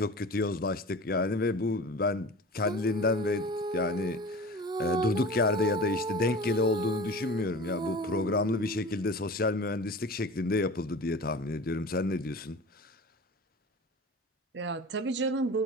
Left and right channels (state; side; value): normal; both; correlation 0.37